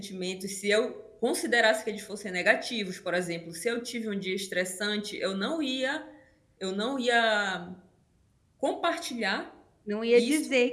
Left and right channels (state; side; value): identical; both; correlation 1.00